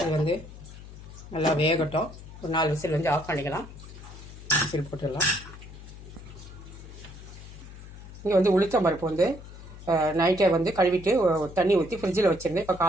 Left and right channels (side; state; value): left; noise; hum, 15 dB below the sound